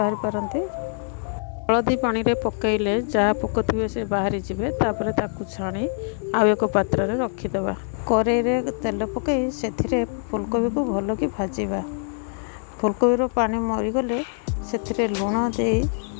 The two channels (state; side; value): silent; right; digital silence